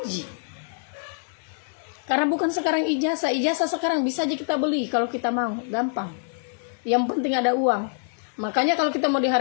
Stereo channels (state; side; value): silent; right; 62 dB below the other